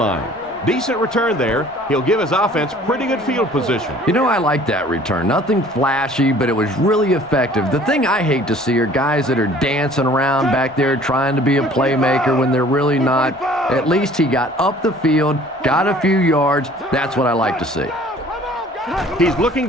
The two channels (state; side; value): normal; both; correlation 0.52